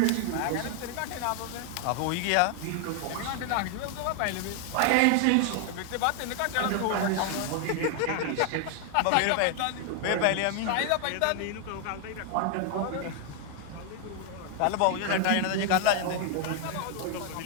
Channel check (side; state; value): both; different; correlation 0.00